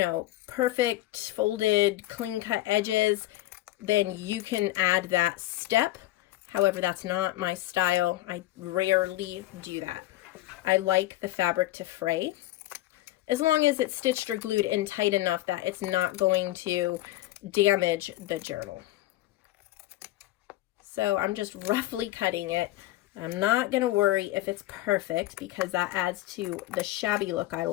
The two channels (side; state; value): right; quieter; 16.2 dB